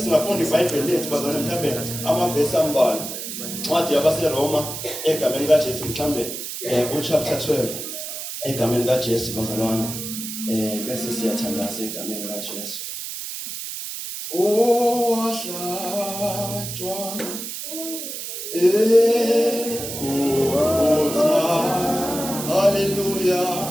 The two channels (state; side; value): noise; right; hiss, 7 dB below the sound